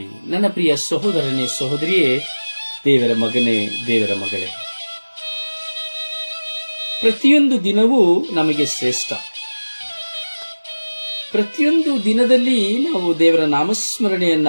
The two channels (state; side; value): inverted; both; correlation -1.00